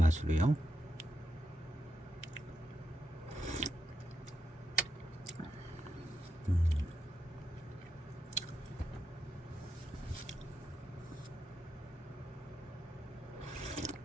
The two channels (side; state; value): both; normal; correlation 0.85